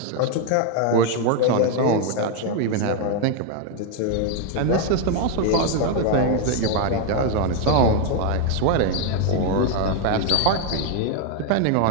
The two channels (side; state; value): both; different; correlation 0.01